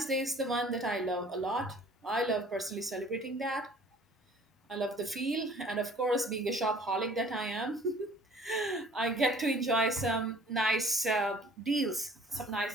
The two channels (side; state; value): both; normal; correlation 0.52